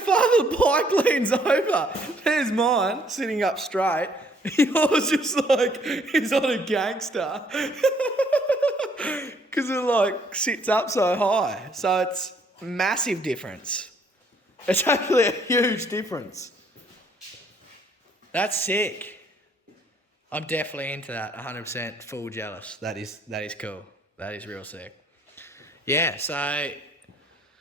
the bike leans over. There's mine sitting up straight. Yours just like he's on a gangster. Because it like sits up so high. So it's massive difference. It's actually a huge difference. That's sick. I'm definitely into that. 100% full jealous. That is cool. That is real sick. Yeah, so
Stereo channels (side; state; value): both; normal; correlation 0.65